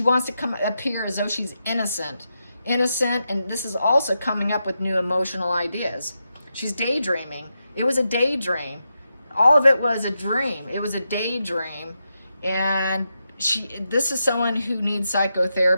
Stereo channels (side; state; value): both; inverted; correlation -0.86